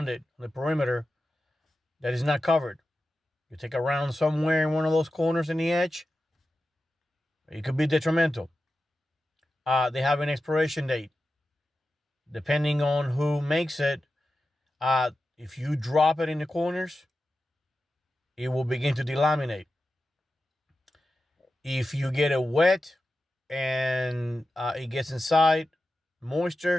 it on the perimeter that is not covered. You take a round somewhere in one of those corners in the edge, it could be detrimental. They have an expiration date. Depending on who makes it, if you drop it in the corners, it will begin to delaminate. If you get it wet and it gets inside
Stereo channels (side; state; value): both; normal; correlation 0.92